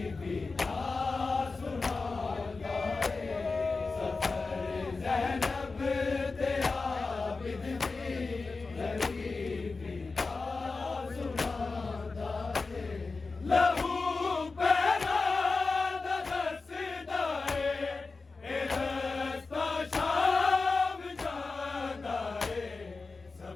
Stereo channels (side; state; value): right; quieter; 4.0 dB